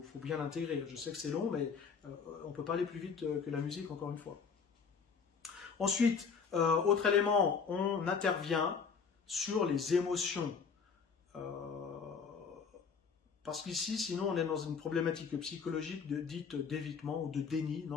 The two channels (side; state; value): right; quieter; 5.8 dB